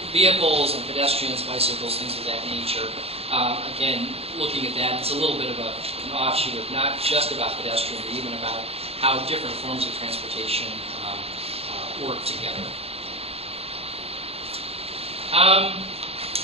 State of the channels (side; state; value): left; late; 0.29 ms